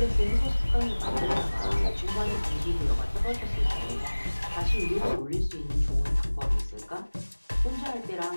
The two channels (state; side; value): inverted; both; correlation -1.00